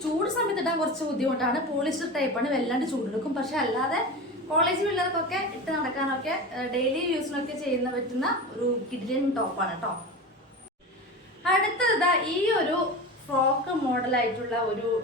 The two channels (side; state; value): both; normal; correlation 0.28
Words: ചൂട് സമയത്ത് ഇടാൻ കുറച്ച് ബുദ്ധിമുട്ടാണ്. പോളിസ്റ്റർ ടൈപ്പാണ്, വല്ലാണ്ട് ചൂടെടുക്കും. പക്ഷെ അല്ലാതെ കോളേജ് പിള്ളേർക്കൊക്കെ ഇട്ട് നടക്കാനൊക്കെ ഡെയിലി യൂസിനൊക്കെ ചെയ്യുന്ന പറ്റുന്ന ഒരു കിഡിലൻ ടോപ്പാണ് കേട്ടോ. അടുത്തത് ഈ ഒരു ഫ്രോക്ക് മോഡലായിട്ടുള്ള ഒരു